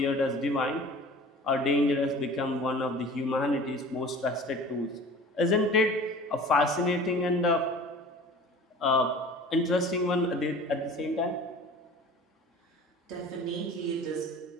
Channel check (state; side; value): normal; both; correlation 0.42